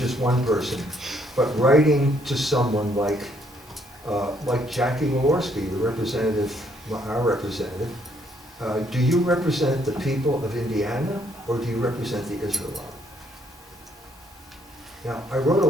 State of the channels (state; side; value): normal; both; correlation 0.69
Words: one person, but writing to someone like Jackie Walorski, the representative, our representative. Do you represent the people of Indiana, or do you represent the Israel lobby? Now, I wrote a